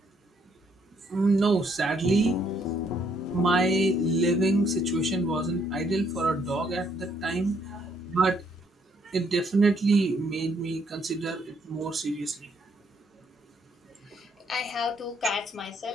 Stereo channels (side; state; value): both; normal; correlation 0.70